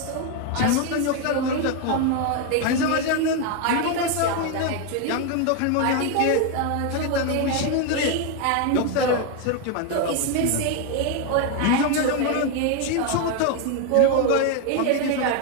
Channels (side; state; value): both; different; correlation 0.01